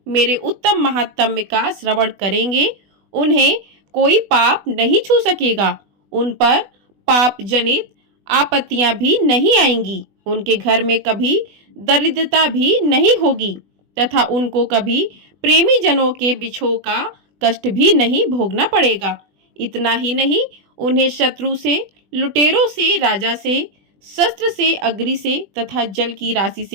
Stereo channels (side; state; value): left; late; 20 ms